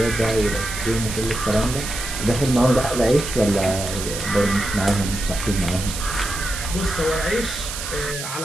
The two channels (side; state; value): right; noise; hiss, 7 dB below the sound